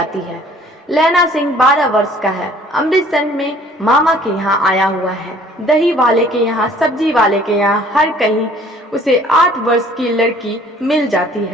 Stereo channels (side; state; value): both; normal; correlation 0.54